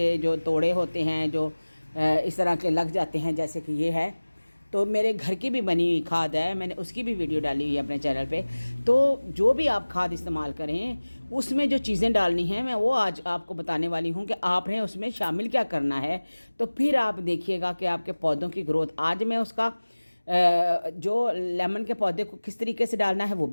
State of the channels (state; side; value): inverted; both; correlation -1.00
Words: जो तोड़े होते हैं, जो इस तरह के लग जाते हैं, जैसे कि ये है, तो मेरे घर की भी बनी हुई खाद है, मैंने उसकी भी वीडियो डाली हुई है अपने चैनल पे। तो जो भी आप खाद इस्तेमाल करें, उसमें जो चीज़ें डालनी हैं, मैं वो आज आपको बताने वाली हूँ कि आपने उसमें शामिल क्या करना है। तो फिर आप देखिएगा कि आपके पौधों की ग्रोथ, आज मैं उसका जो लेमन के पौधे को किस तरीके से डालना है वो